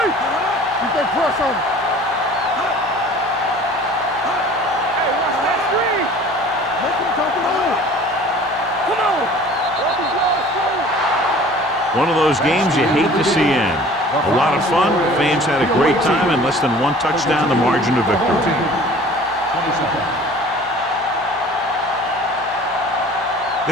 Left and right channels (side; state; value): both; normal; correlation 0.47